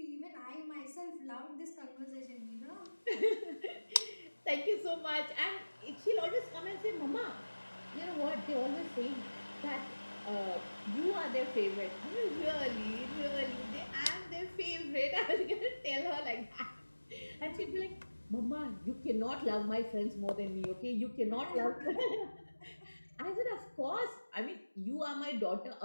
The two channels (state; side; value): inverted; both; correlation -1.00